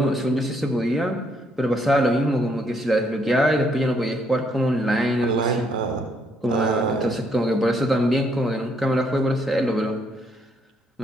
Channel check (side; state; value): both; normal; correlation 0.71